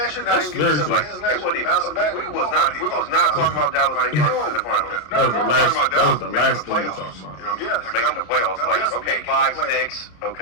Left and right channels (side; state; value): right; late; 33 ms